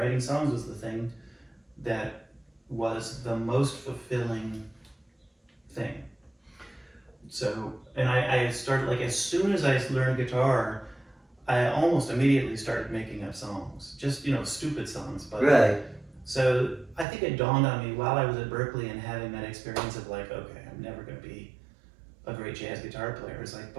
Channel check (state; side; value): drops out; left; at 17.1 s